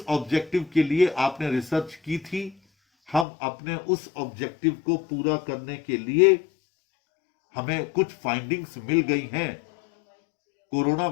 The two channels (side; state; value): right; drops out; at 3.2 s